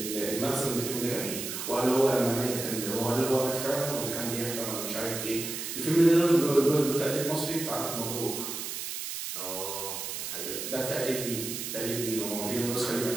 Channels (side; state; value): right; noise; hiss, 5 dB below the sound